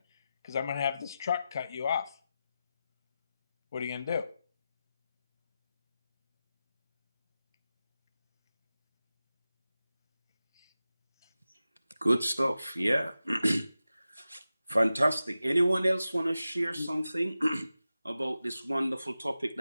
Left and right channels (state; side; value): inverted; both; correlation -0.93